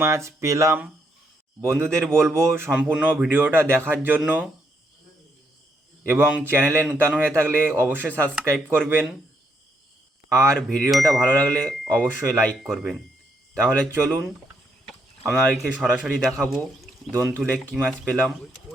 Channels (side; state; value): both; normal; correlation 0.75